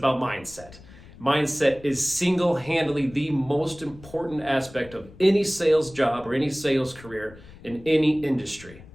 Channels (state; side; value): noise; left; rumble, 20 dB below the sound